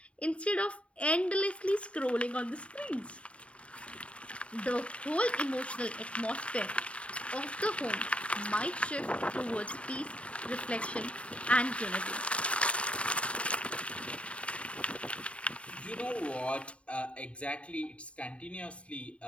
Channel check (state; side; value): late; right; 0.062 ms